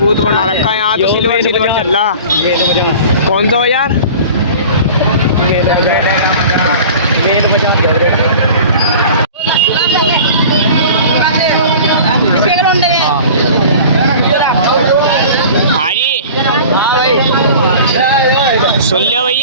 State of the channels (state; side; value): inverted; both; correlation -0.40